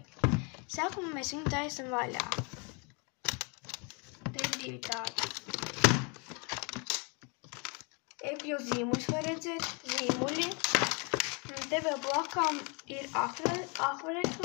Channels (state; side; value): quieter; right; 32.9 dB